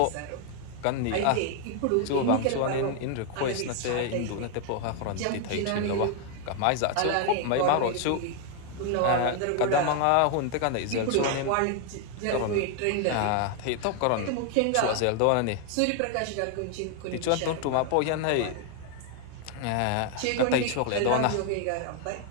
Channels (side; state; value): both; different; correlation 0.00